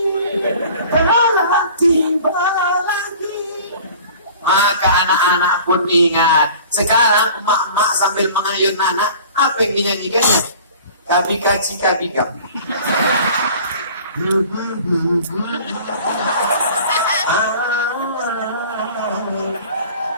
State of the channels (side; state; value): both; inverted; correlation -0.45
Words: telah tiba lagi. Maka anak-anak pun ingat. Sekarang emak-emak sambil mengayun anak, apa yang dinyanyikannya? Kabika cika bikam.